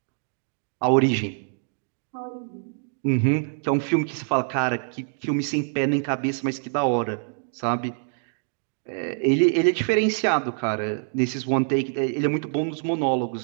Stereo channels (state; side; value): silent; left; digital silence